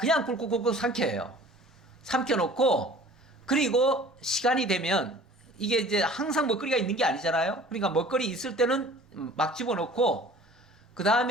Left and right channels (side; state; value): both; normal; correlation 0.47